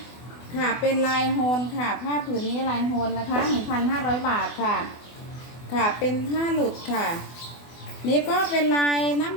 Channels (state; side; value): late; right; 24 ms